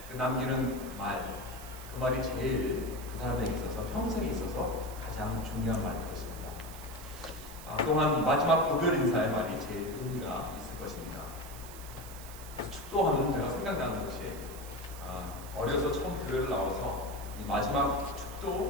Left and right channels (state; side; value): noise; right; hiss, 15 dB below the sound